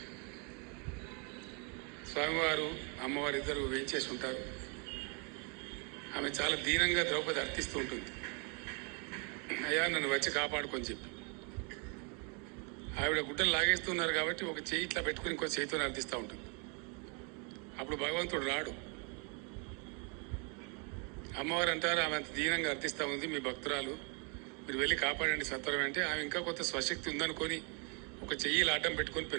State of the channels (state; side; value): quieter; left; 35.8 dB